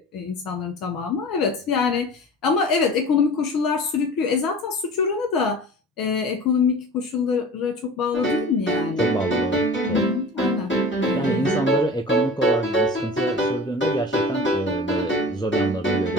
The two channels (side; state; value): both; normal; correlation 0.39